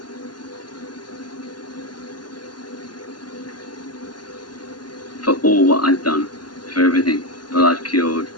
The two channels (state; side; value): late; right; 0.70 ms